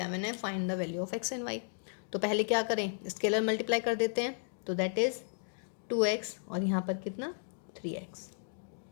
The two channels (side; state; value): right; silent; digital silence